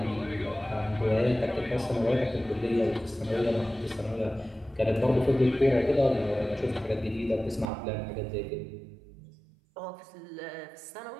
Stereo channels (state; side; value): drops out; left; at 7.7 s